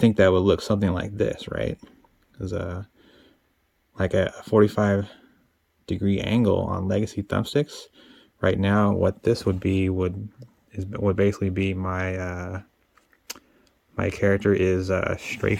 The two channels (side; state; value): both; identical; correlation 1.00